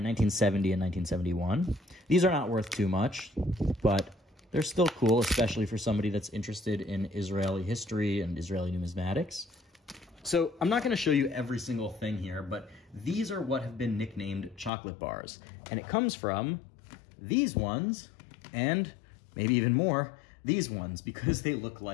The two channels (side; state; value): right; drops out; at 14.7 s